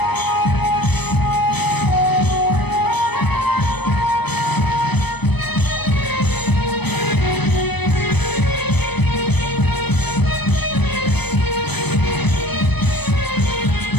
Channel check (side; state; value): right; late; 0.98 ms